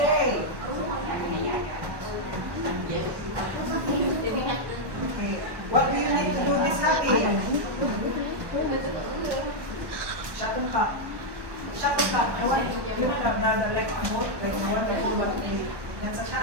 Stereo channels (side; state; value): left; late; 1.1 ms